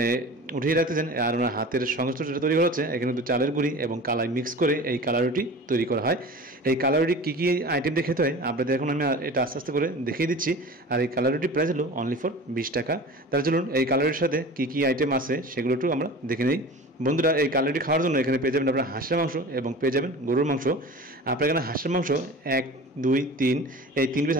উঠিয়ে রাখতেছেন। আর ওনার হাতের সংস্পর্শে তৈরি করা হচ্ছে। এখানে কিন্তু চালের গুঁড়ি এবং কালাই মিক্স করে এই কালাই রুটি তৈরি করা হয়। এই কালাই রুটি কী কী আইটেম দিয়ে খেতে হয় আপনাদের এখন আমি এটা আস্তে আস্তে করে দেখিয়ে দিচ্ছি। আর এই কালাই রুটির প্রাইস হলো অনলি ফর 20 টাকা। তাহলে চলুন এই কালাই রুটির সাথে কী কী আইটেম আছে সেগুলো একটু আমরা দেখে নিই। বন্ধুরা, এই কালাই রুটি খাওয়ার জন্য এখানে পেয়ে যাবেন আপনারা হাঁসের মাংস এবং পেয়ে যাবেন গরুর মাংস। আপনার এখানে হাঁসের মাংস 1, 2, 3 এই 3 পিস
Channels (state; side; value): normal; both; correlation 0.37